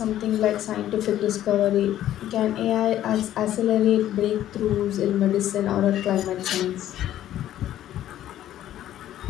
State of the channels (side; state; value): right; quieter; 12.4 dB